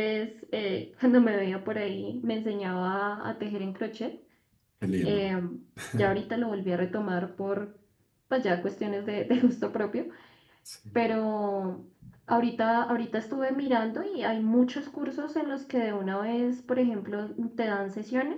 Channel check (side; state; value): both; identical; correlation 1.00